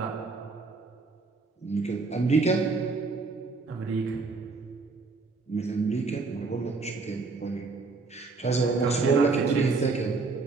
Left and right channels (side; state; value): left; quieter; 4.1 dB